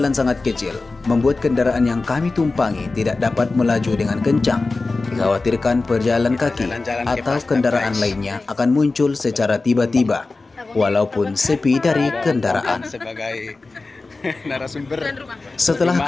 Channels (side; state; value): right; quieter; 3.6 dB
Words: sangat kecil, membuat kendaraan yang kami tumpangi tidak dapat melaju dengan kencang. Dikhawatirkan pejalan kaki atau kendaraan lainnya akan muncul secara tiba-tiba, walaupun sepi dari kendaraan. Setelah